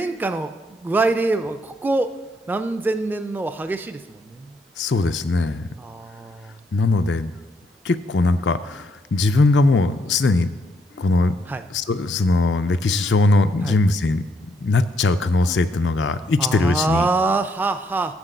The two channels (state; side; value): normal; both; correlation 0.74